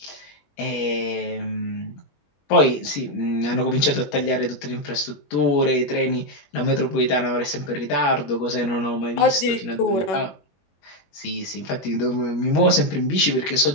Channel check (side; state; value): right; late; 21 ms